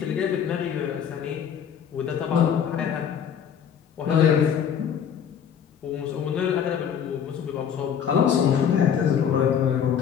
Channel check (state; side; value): quieter; right; 8.1 dB